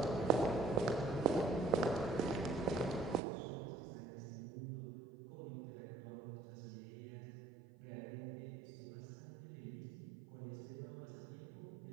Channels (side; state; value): left; drops out; at 3.2 s